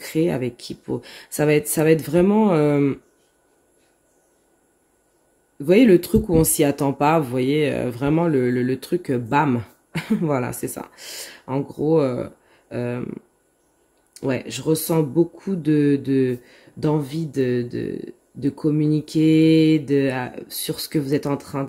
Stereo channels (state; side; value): identical; both; correlation 1.00